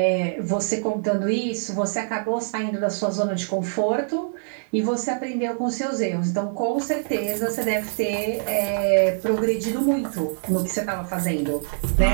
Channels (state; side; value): silent; left; digital silence